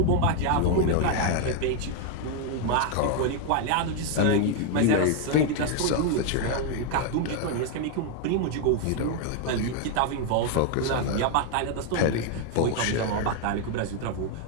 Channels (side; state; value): both; different; correlation 0.01